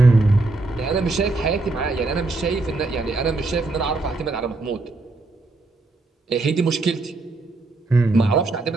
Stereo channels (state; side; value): quieter; left; 3.3 dB